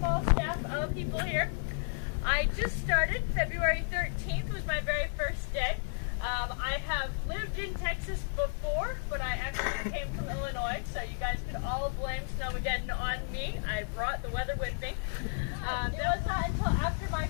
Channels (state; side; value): silent; right; digital silence